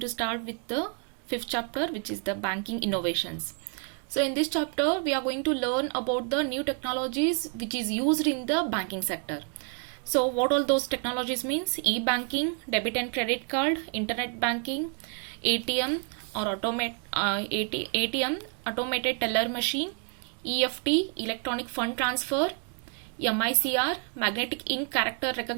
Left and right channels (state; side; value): quieter; left; 38.8 dB